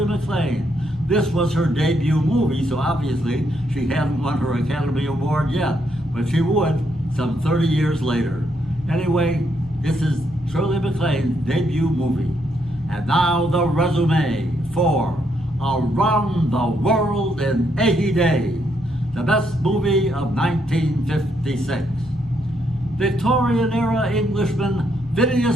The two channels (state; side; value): normal; both; correlation 0.76